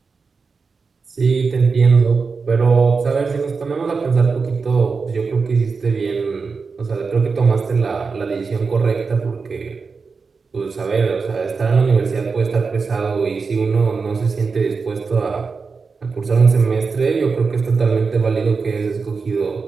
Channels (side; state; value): left; quieter; 4.8 dB